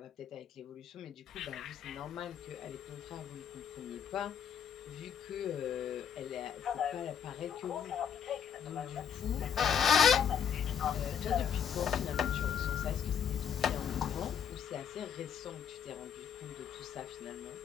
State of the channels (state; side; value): quieter; right; 8.1 dB